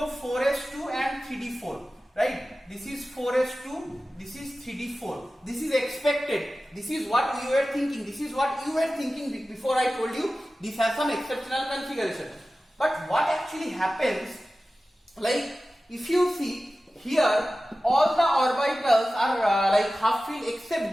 4s2 and 3d4, right? This is 4s2, this is 3d4. This is expected. This is what we were thinking. This is what you were thinking before I told you this has some exceptional configuration. But what actually happens, like if you see here, all the orbitals are like half filled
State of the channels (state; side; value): normal; both; correlation 0.95